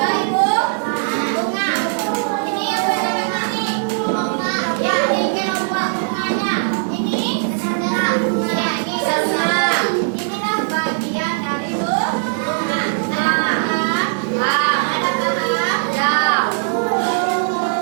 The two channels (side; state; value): left; silent; digital silence